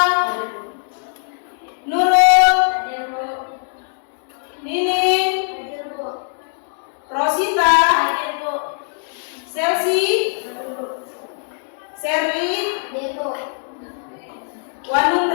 Hadir, Bu. Nurul, Hadir, Bu. Nining, Hadir, Bu. Rosita, Hadir, Bu. Selsi, Hadir, Bu. Serli, Hadir, Bu.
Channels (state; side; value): silent; right; 65 dB below the other